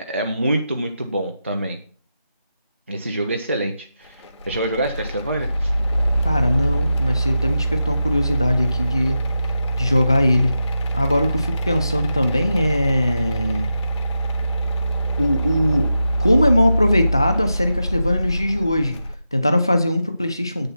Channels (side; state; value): both; inverted; correlation -0.89